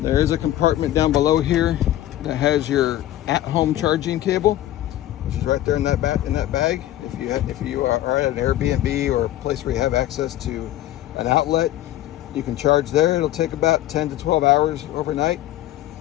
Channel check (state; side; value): quieter; right; 13.8 dB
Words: is a compartment down below here that has your at-home charging cable, which is right there in that bag. If you are at an Airbnb or a place where you have access to an outlet, you can charge there. It'll take about 10 to 12 hours overnight.